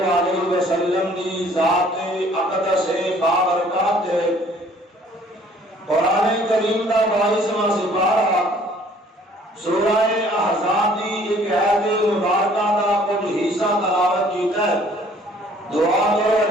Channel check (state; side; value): normal; both; correlation 0.57